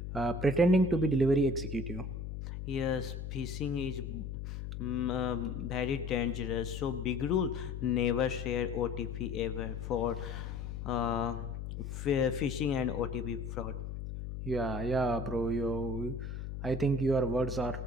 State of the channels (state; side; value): noise; left; hum, 6 dB below the sound